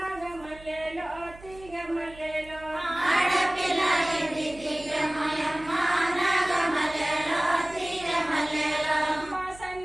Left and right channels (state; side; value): noise; right; hum, 20 dB below the sound